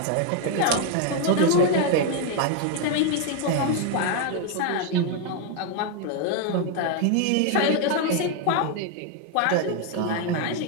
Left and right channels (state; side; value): different; both; correlation 0.01